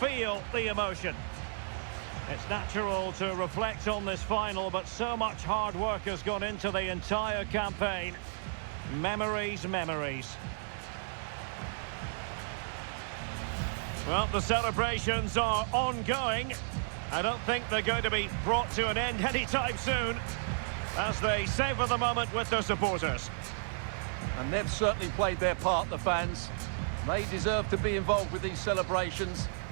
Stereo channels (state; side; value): silent; left; digital silence